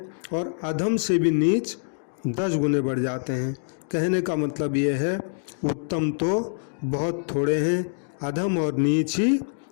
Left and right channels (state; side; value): silent; right; digital silence